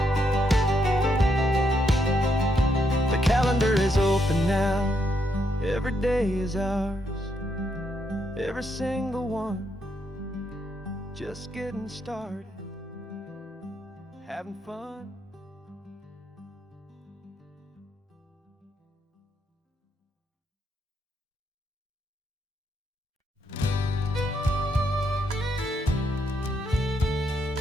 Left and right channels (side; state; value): both; normal; correlation 0.78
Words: The calendar is open now, every day is ours, every single one, just getting started, having fun.